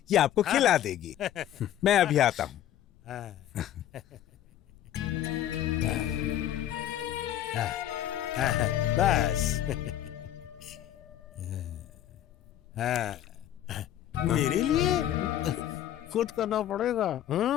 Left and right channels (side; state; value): right; quieter; 11.7 dB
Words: ये आपको खिला देगी। मैं अभी आता हूँ। बस। मेरे लिए खुद करना पड़ेगा।